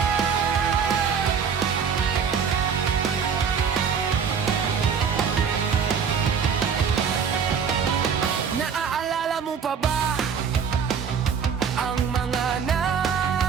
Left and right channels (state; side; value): quieter; left; 6.7 dB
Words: Naaalala mo pa ba ang mga